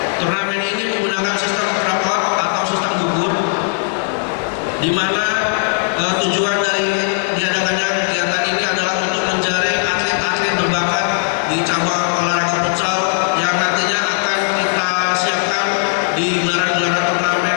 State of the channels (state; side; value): silent; right; digital silence